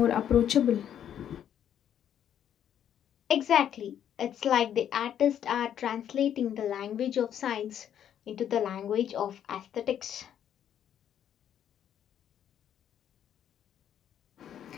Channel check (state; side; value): quieter; right; 9.7 dB